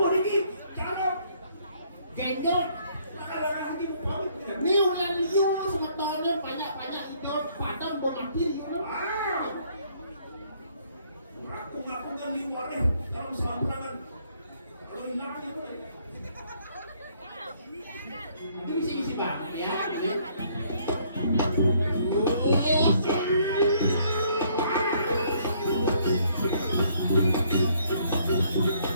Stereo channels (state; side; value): inverted; both; correlation -0.65